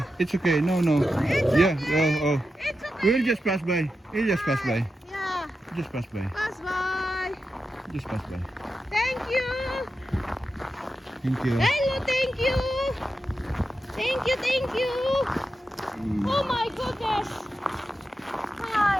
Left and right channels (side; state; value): both; normal; correlation 0.90